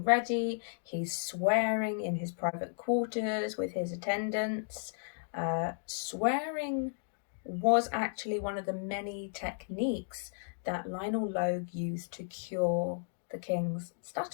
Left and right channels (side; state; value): right; silent; digital silence